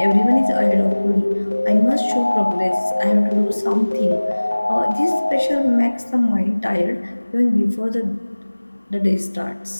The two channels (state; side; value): inverted; both; correlation -1.00